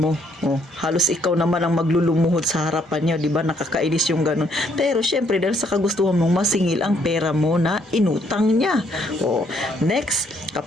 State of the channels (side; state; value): both; normal; correlation 0.69